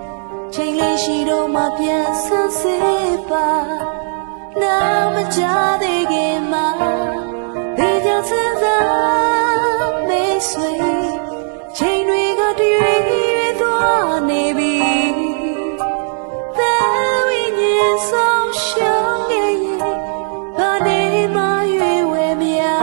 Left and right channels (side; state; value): left; silent; digital silence